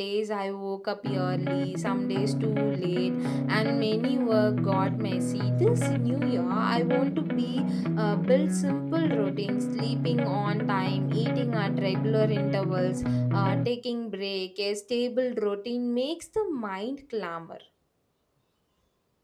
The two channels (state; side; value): identical; both; correlation 1.00